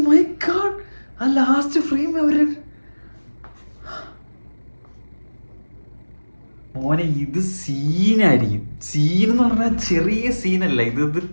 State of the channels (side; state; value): both; inverted; correlation -1.00